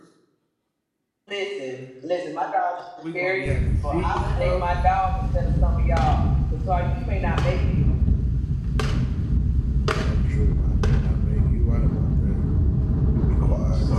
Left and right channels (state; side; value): identical; both; correlation 1.00